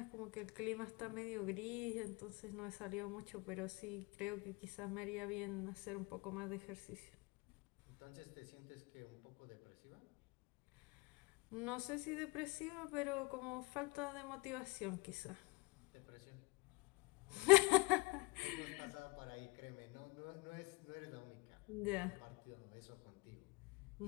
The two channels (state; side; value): quieter; right; 27.1 dB